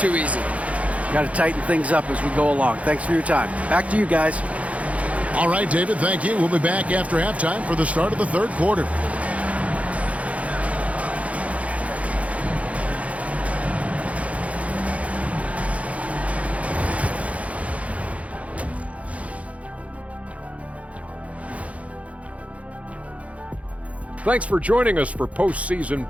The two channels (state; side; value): late; left; 0.065 ms